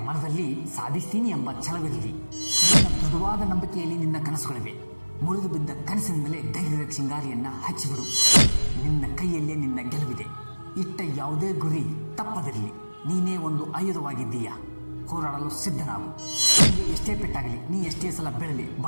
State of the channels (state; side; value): inverted; both; correlation -1.00